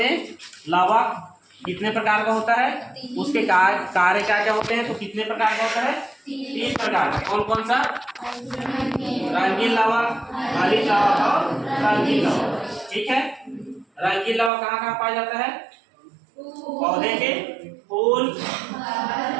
लवक कितने प्रकार का होता है, उसके कार्य क्या क्या होते हैं। तो कितने प्रकार का होता है? 3 प्रकार का। कौन कौन सा? रंगीन लवक, हरित लवक और रंगीन लवक। ठीक है, रंगीन लवक कहाँ कहाँ पाया जाता है? पौधे के फूल,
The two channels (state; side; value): drops out; left; at 14.5 s